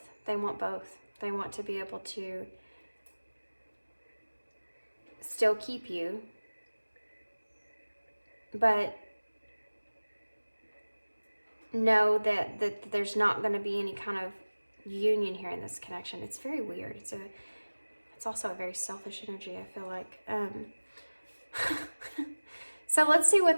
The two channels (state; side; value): inverted; both; correlation -1.00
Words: They want both. They want to be able to still keep you, but know that there's not going to be any kind of union here in this connection. It's very weird. It's also a very selfish energy, I feel like. So let's see